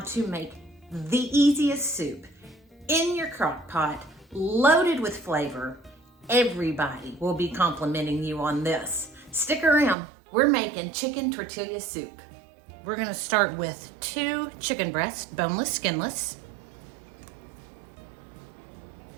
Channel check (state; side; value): drops out; left; at 10.0 s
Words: make the easiest soup in your crock pot, loaded with flavor. Everybody will be complimenting you on this. Stick around, we're making chicken tortilla soup. We're going to start with 2 chicken breasts, boneless, skinless,